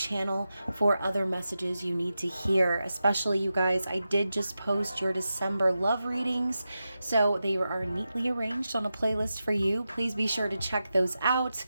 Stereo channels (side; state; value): both; inverted; correlation -0.91